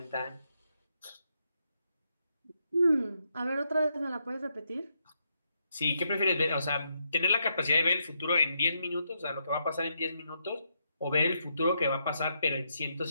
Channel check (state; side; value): inverted; both; correlation -0.79